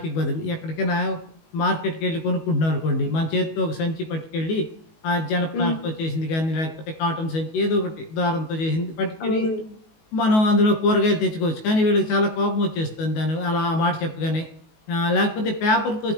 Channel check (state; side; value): late; right; 19 ms